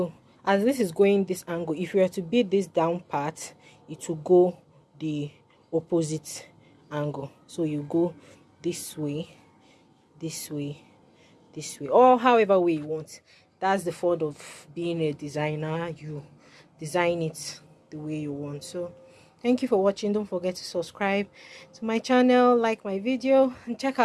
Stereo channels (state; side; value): identical; both; correlation 1.00